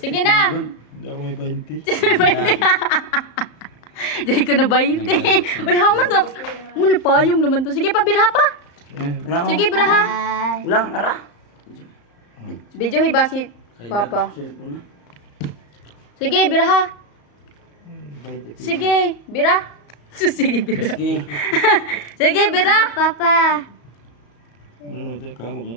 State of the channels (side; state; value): right; late; 34 ms